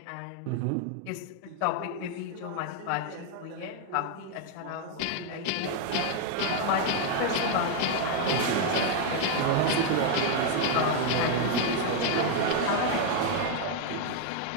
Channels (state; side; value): different; both; correlation 0.01